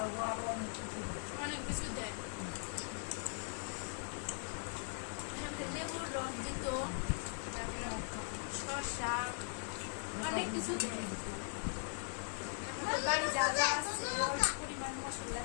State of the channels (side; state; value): right; silent; 51 dB below the other